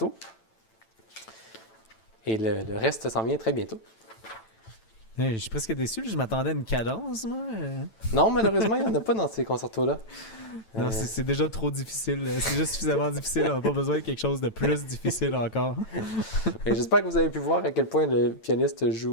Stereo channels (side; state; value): right; late; 9.0 ms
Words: Et le reste s'en vient très bientôt. Je suis presque déçu, je m'attendais à une cadence, moi. Non, malheureusement, il n'y en a pas dans ces concertos-là. Non, c'est déjà trop difficile. C'est déjà suffisamment difficile. On n'a pas besoin de quelque chose de plus difficile encore. Et j'espère que vous avez pu voir à quel point le pianiste